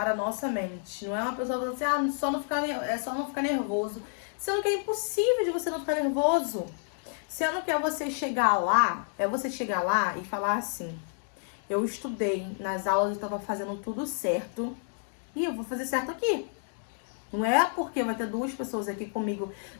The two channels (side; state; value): right; silent; 58 dB below the other